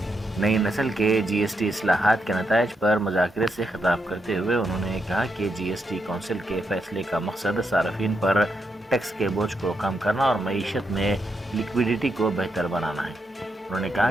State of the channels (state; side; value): normal; both; correlation 0.82